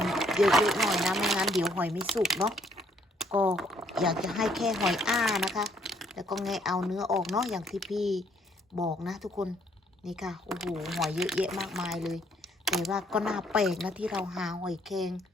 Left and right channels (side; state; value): both; normal; correlation 0.67